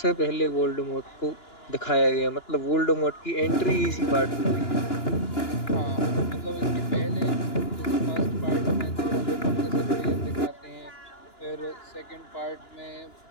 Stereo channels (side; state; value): right; late; 2.9 ms